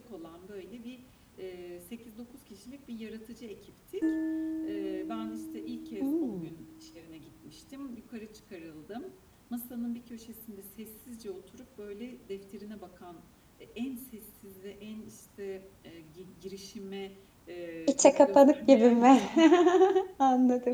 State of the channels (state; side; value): identical; both; correlation 1.00